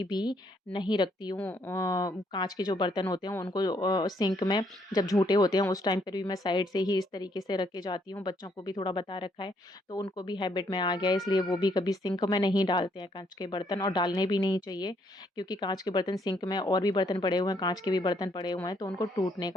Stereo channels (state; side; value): normal; both; correlation 0.70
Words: भी नहीं रखती हूँ। काँच के जो बर्तन होते हैं उनको सिंक में जब झूठे होते हैं उस टाइम पर भी मैं साइड से ही इस तरीके से रख के जाती हूँ। बच्चों को भी थोड़ा बता रखा है तो उनको भी हैबिट में आ गया है इसलिए वो भी कभी सिंक में नहीं डालते हैं काँच के बर्तन और डालने भी नहीं चाहिए। क्योंकि काँच के बर्तन सिंक में और भी बर्तन पड़े हुए हैं, काँच के भी बर्तन पड़े हुए हैं, तो उनको टूटने